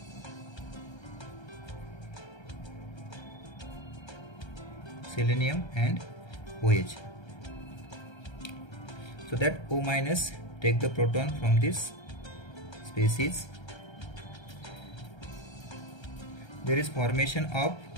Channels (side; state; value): right; late; 1.3 ms